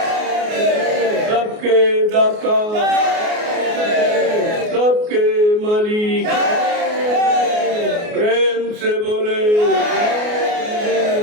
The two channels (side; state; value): left; late; 28 ms